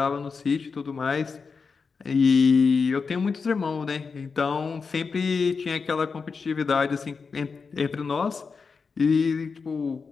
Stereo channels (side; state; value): right; quieter; 5.1 dB